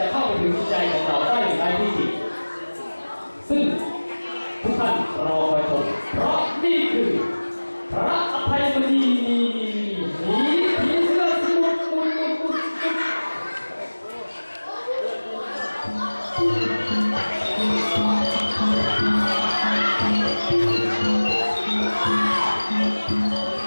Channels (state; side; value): inverted; both; correlation -1.00